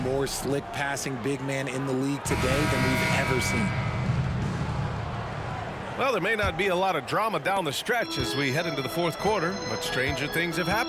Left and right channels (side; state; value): both; identical; correlation 1.00